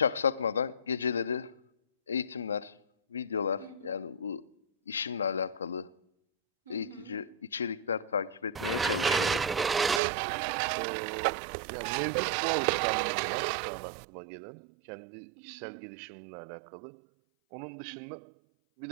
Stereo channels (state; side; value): drops out; left; at 10.0 s